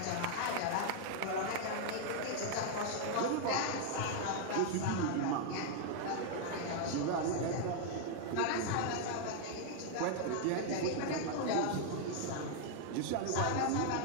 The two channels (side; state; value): both; different; correlation 0.00